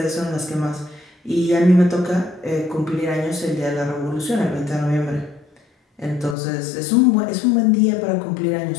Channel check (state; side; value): drops out; right; at 6.4 s